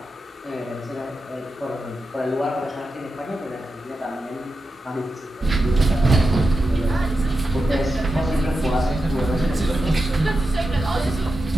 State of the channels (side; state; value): both; normal; correlation 0.89